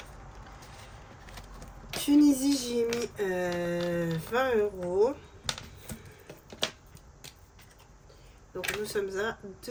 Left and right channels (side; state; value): both; identical; correlation 1.00